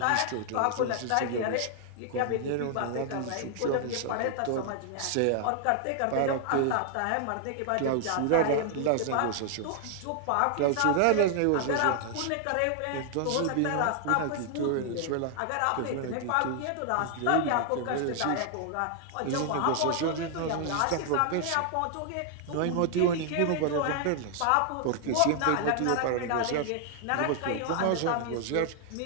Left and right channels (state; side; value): different; both; correlation 0.00